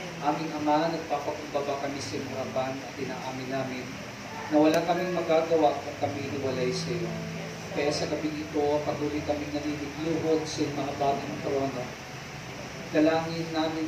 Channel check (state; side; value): identical; both; correlation 1.00